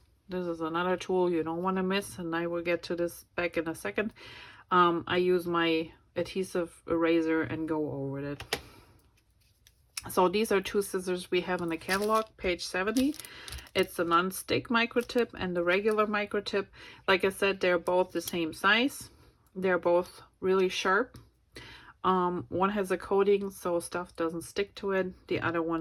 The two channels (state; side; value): identical; both; correlation 1.00